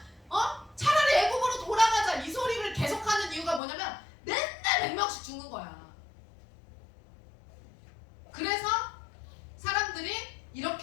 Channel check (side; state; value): right; drops out; at 3.6 s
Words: 차라리 애굽으로 돌아가자 이 소리를 계속하는 이유가 뭐냐면 맨날 100명씩 죽는 거야. 그래서 사람들이